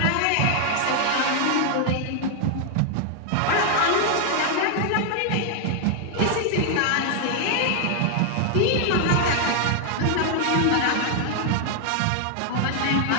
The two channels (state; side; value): different; both; correlation 0.00